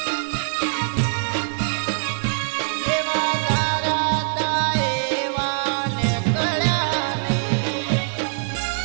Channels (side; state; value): left; silent; digital silence